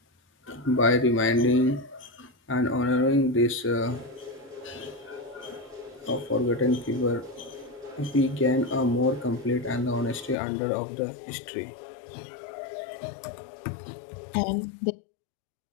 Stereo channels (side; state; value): right; drops out; at 10.4 s